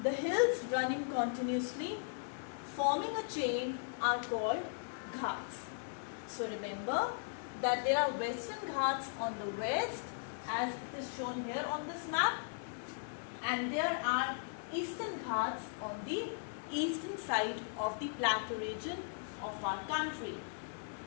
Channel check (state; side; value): silent; right; digital silence